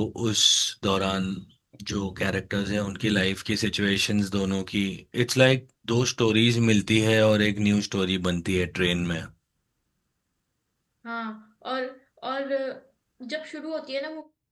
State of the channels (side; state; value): both; identical; correlation 1.00